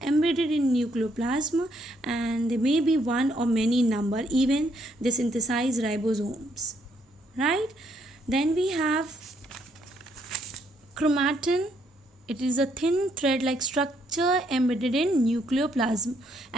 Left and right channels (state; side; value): normal; both; correlation 0.72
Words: embedded in nucleoplasm, and there may be one or many number, even they synthesize ribosomes, right? Then we have chromatin. It is a thin thread like structure embedded in nucleoplasm.